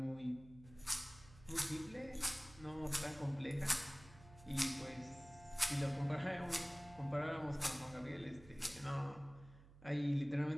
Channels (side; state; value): right; noise; hum, 20 dB below the sound